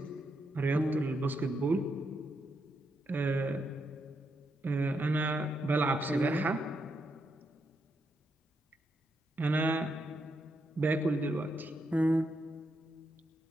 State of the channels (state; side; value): normal; both; correlation 0.81